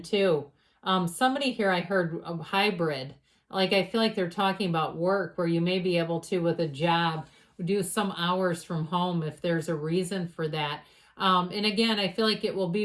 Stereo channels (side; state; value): both; identical; correlation 1.00